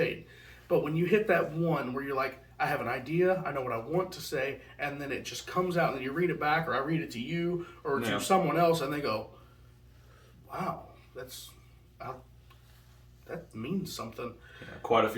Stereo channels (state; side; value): identical; both; correlation 1.00